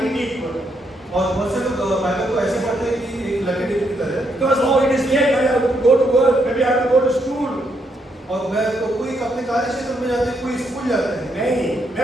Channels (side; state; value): both; normal; correlation 0.76